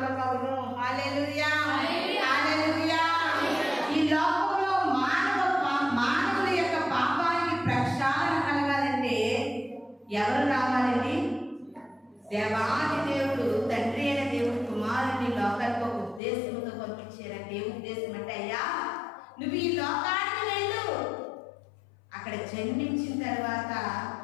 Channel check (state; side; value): drops out; right; at 16.2 s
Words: హల్లెలూయా, హల్లెలూయా. ఈ లోకంలో మానవుల యొక్క పాపానికి ప్రక్షాళన కలగాలంటే ఎవరు రావాలండి? దేవాది దేవుడు, తండ్రి అయిన దేవుడు కుమారుని లోకానికి ఒక ఉద్దేశంతో పంపించారంటే, ఏ ఉద్దేశం అంటే, అయ్యా నువ్వు ఈ లోకానికి వెళ్ళు, అక్కడ జన్మించిన తర్వాత